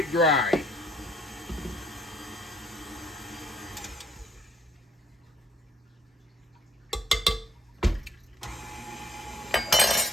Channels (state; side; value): normal; both; correlation 0.63